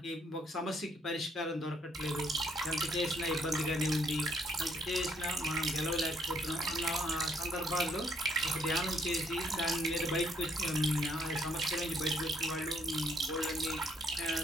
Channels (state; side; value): normal; both; correlation 0.68